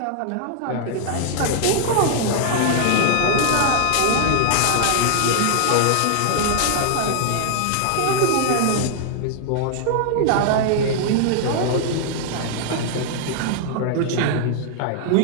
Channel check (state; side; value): different; both; correlation 0.00